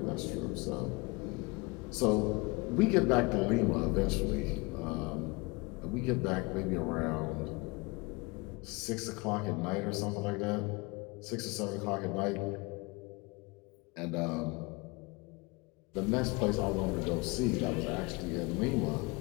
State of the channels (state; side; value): quieter; right; 26.1 dB